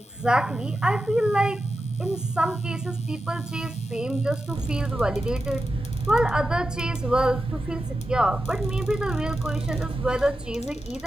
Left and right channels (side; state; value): both; normal; correlation 0.91